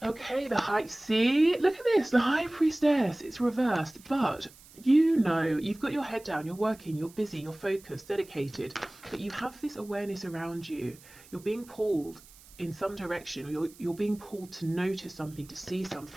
Okay, the High, see, look at this, the High Priestess, it's reversed, but you know, you've got your head down, you're working, you're busy, you're focused, dedicated, but you have this awareness around you. You're being pulled in some direction, or you're being pulled to notice something, to see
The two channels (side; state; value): right; noise; hiss, 23 dB below the sound